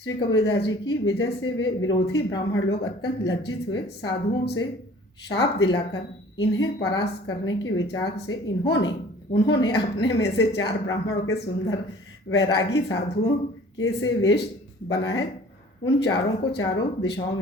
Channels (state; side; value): normal; both; correlation 0.49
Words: श्री कबीरदास जी की विजय से वे विरोधी ब्राह्मण लोग अत्यंत लज्जित हुए। साधुओं से शाप दिलाकर इन्हें परास्त करने के विचार से उन्होंने अपने में से 4 ब्राह्मणों के सुंदर वैरागी साधुओं के से वेश बनाए। उन चारों को चारों दिशाओं